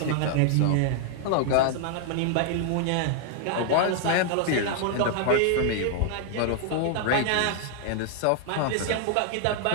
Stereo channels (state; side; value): different; both; correlation 0.00